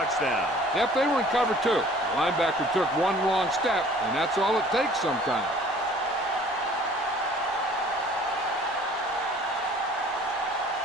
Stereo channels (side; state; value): both; normal; correlation 0.51